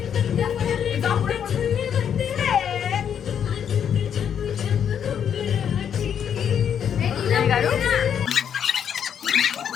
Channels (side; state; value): right; quieter; 8.4 dB